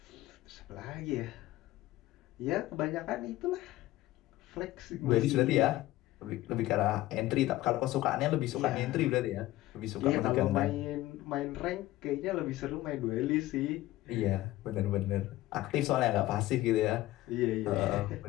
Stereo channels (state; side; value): quieter; right; 16.5 dB